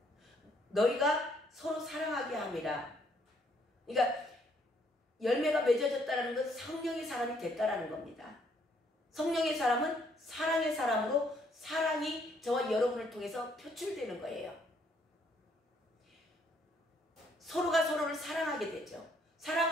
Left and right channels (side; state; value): both; normal; correlation 0.68